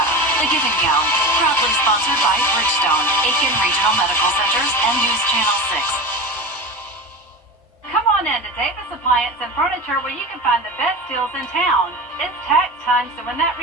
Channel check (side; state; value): both; normal; correlation 0.27